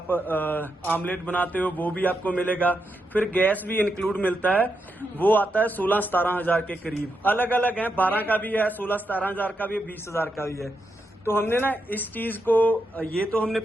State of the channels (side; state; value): both; normal; correlation 0.84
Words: आमलेट बनाते हो, वो भी आपको मिलेगा। फिर गैस भी इंक्लूड मिलता है, वो आता है 16-17 हजार के करीब। अलग अलग है, 12 का भी है, 16-17 हजार का भी है, 20 हजार का भी है। तो हमने ना इस चीज को, ये तो हमने